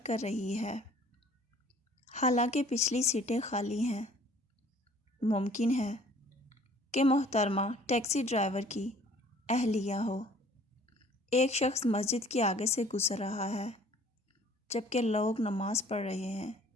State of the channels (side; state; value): both; normal; correlation 0.54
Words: کر رہی ہے، حالانکہ پچھلی سیٹیں خالی ہیں۔ ممکن ہے کہ محترمہ ٹیکسی ڈرائیور کی اہلیہ ہو۔ ایک شخص مسجد کے آگے سے گزر رہا ہے جبکہ لوگ نماز پڑھ رہے ہیں